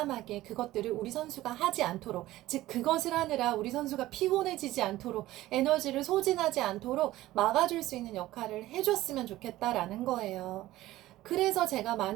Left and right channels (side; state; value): left; quieter; 16.1 dB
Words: 그것들을 우리 선수가 하지 않도록, 즉 그것을 하느라 우리 선수가 피곤해지지 않도록, 에너지를 소진하지 않도록 막아줄 수 있는 역할을 해줬으면 좋겠다라는 거예요. 그래서 제가